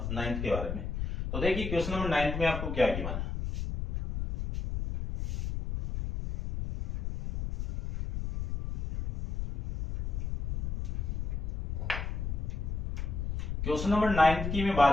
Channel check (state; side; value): noise; left; rumble, 3 dB below the sound